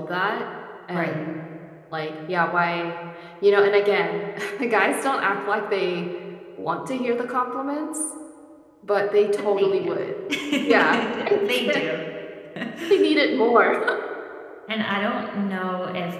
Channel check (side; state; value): both; identical; correlation 1.00